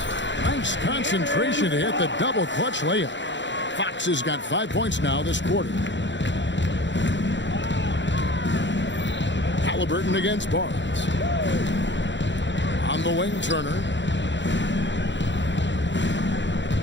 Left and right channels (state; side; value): late; right; 0.53 ms